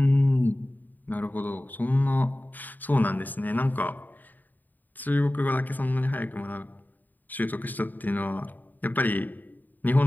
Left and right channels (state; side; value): late; right; 0.087 ms